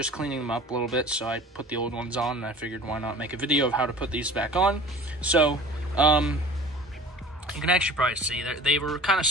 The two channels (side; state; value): both; normal; correlation 0.42